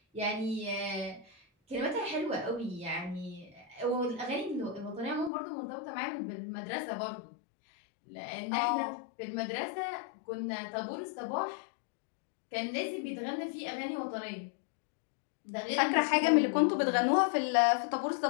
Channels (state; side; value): drops out; right; at 5.3 s